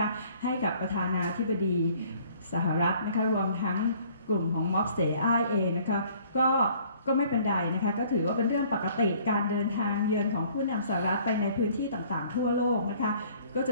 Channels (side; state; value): both; inverted; correlation -0.56